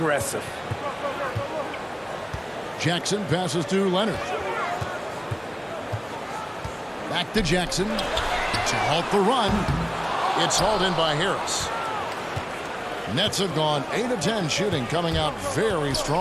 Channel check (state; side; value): identical; both; correlation 1.00